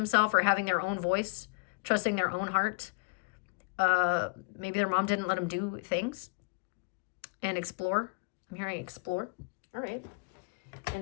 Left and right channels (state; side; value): quieter; right; 31.2 dB